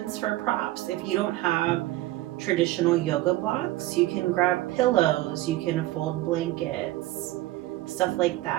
for props. If you don't have traditional yoga blocks, you can grab pillows, you can fold blankets, stuff like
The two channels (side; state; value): left; quieter; 17.0 dB